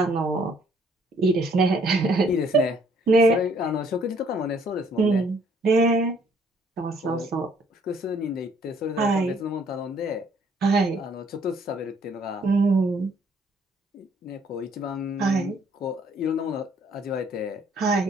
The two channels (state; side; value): normal; both; correlation 0.63